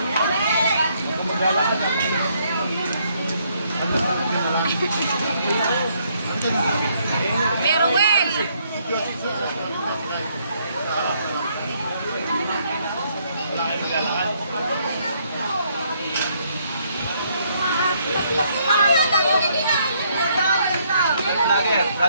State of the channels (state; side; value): inverted; both; correlation -0.70